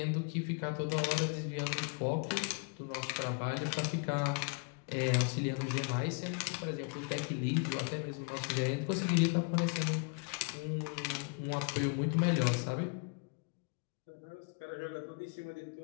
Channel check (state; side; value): quieter; right; 35.6 dB